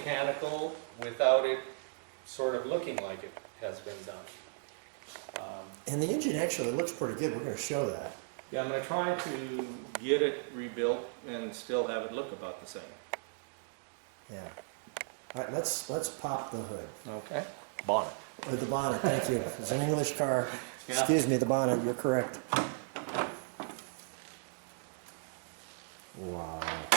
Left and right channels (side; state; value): left; silent; digital silence